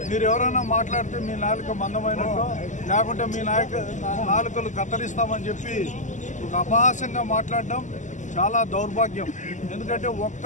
మీరు ఎవరైనా మాట్లాడితే మీ నాలుక మందమైనట్టు లేకుంటే మీ నాలుకలు కత్తిరిస్తామని చెప్పి ఒక అపహాస్యంగా మాట్లాడడం చాలా దౌర్భాగ్యం. ఎందుకంటే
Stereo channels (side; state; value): right; late; 0.36 ms